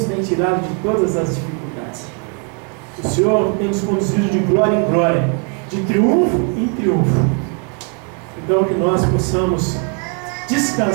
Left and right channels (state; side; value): quieter; left; 37.7 dB